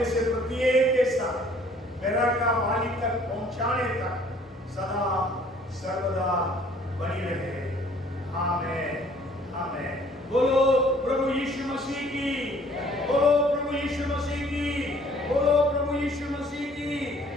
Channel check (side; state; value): both; normal; correlation 0.57